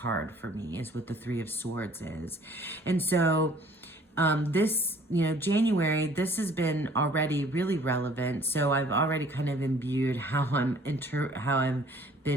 for me, is what the Three of Swords is. And so this, January, this has been already really relevant. So I've already kind of imbued how I've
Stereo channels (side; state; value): both; normal; correlation 0.55